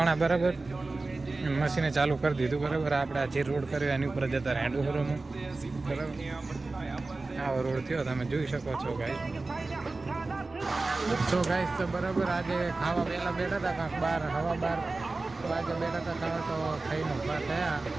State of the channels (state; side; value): quieter; left; 3.4 dB